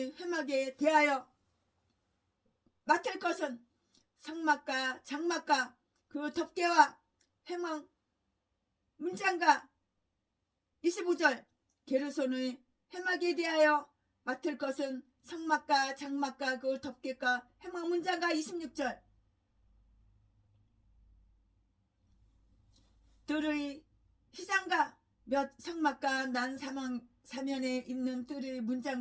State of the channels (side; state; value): both; identical; correlation 1.00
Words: 회막에 대하여 맡을 것은 성막과 장막과 그 덮개와 회막 문장과 25절. 게르손의 회막에 대하여 맡을 것은 성막과 장막과 그 덮개과 회막 문장과 26절. 뜰의 휘장과 몇 성막과 난 사면에 있는 뜰의